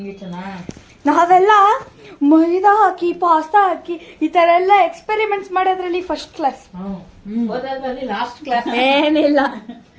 ಇಷ್ಟನಾ? ನಾವೆಲ್ಲ ಮೈದಾ ಹಾಕಿ ಪಾಸ್ತಾ ಹಾಕಿ ಈ ತರ ಎಲ್ಲ ಎಕ್ಸ್ಪೆರಿಮೆಂಟ್ಸ್ ಮಾಡೋದ್ರಲ್ಲಿ ಫಸ್ಟ್ ಕ್ಲಾಸ್. ಓದೋದ್ರಲ್ಲಿ ಲಾಸ್ಟ್ ಕ್ಲಾಸ್. ಏನಿಲ್ಲ.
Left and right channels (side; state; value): both; identical; correlation 1.00